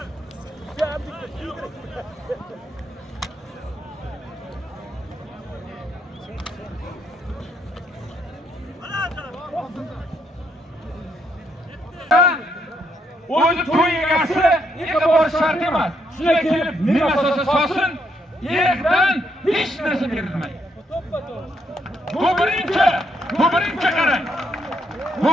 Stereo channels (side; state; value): both; normal; correlation 0.75